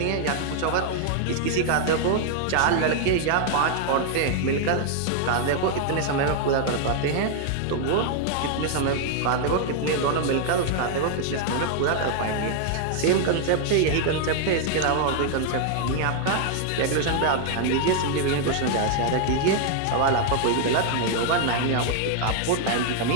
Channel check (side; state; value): both; different; correlation 0.00